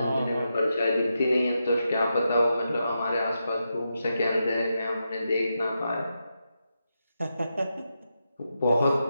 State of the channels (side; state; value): both; inverted; correlation -0.86